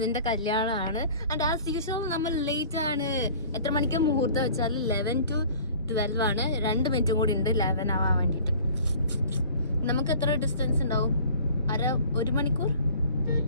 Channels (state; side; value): inverted; both; correlation -0.47